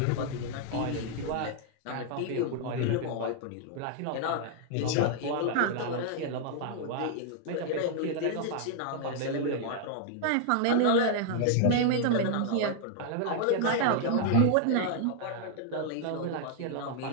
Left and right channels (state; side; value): different; both; correlation -0.01